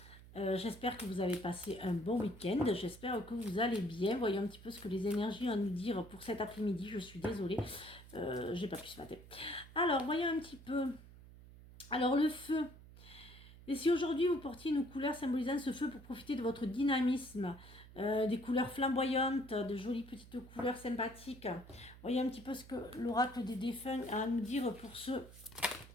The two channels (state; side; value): noise; right; hum, 18 dB below the sound